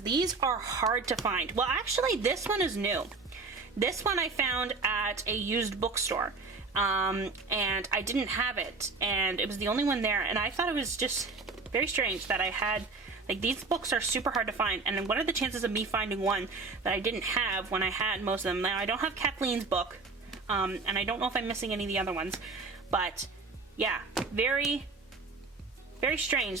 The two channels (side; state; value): left; quieter; 4.0 dB